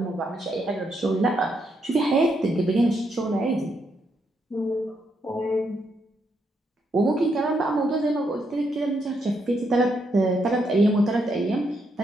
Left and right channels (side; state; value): both; normal; correlation 0.78